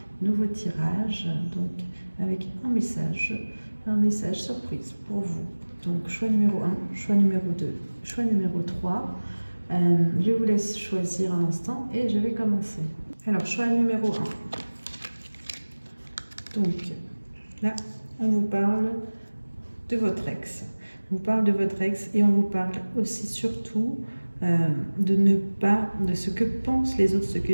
nouveau tirage, donc avec un message surprise pour vous. Donc choix numéro 1, choix numéro 2, choix numéro 3. Je vous laisse choisir un instant et je vais commencer. Alors choix numéro 1. Donc là, on vous parle de votre ex. On vous parle de votre ex et on vous parle aussi surtout de ce que pensent les autres, ce que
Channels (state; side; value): inverted; both; correlation -1.00